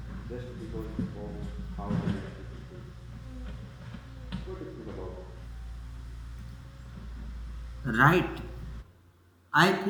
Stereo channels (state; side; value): identical; both; correlation 1.00